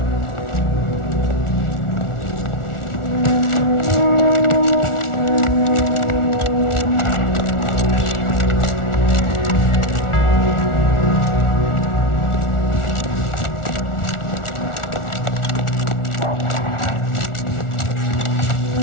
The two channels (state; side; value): late; right; 1.4 ms